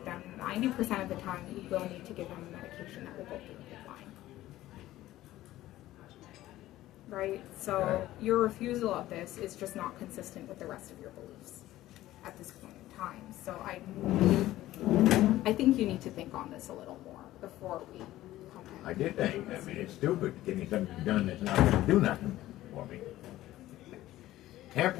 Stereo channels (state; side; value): quieter; right; 15.2 dB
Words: them. 90% of the time, you will need to give them a medication that will go through the PICC line. Right? So Right. your refusal of this is just not consistent with the rest of your beliefs at this point in time. So I think you need to think on this a little more before we come in. I did think, I mean, it's stupid getting something done that's not gonna do nothing for me.